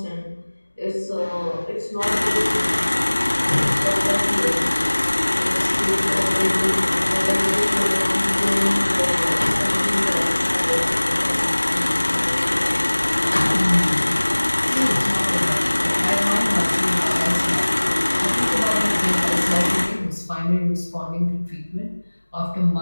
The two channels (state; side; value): inverted; both; correlation -1.00